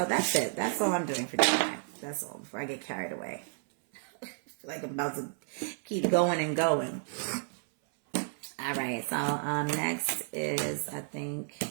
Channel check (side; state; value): left; silent; 57 dB below the other